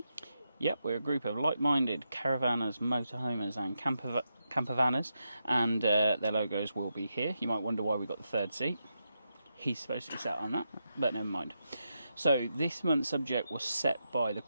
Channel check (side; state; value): both; inverted; correlation -0.85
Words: Yep, we're a group of like-minded caravanners, motorhomers and campervanners, and their logos will be here. You might wonder why we got the third seat. He's supposed to be sat on that, but never mind. So this month's subject was set by the